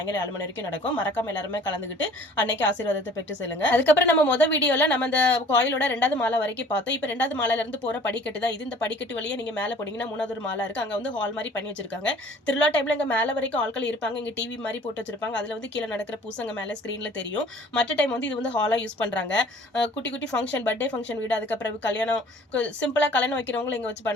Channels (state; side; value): normal; both; correlation 0.51